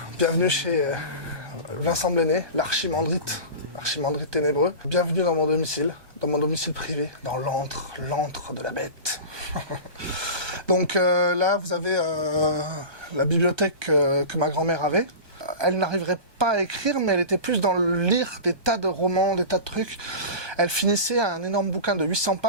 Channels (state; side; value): late; left; 1.2 ms